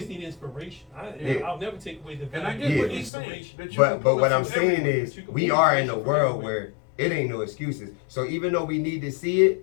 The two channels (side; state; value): right; drops out; at 3.1 s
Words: Period. need inspiration. I'll never take away the And I value get of what he's saying. inspiration. that you But can pull what up I'm from saying everywhere. is, You can we pull are in a inspiration from world everywhere. where it ain't no excuses. So even though we need to see